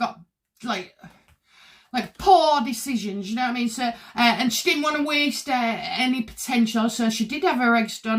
like poor decisions, you know what I mean? So, and she didn't want to waste any potential, so she did have her eggs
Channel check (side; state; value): both; identical; correlation 1.00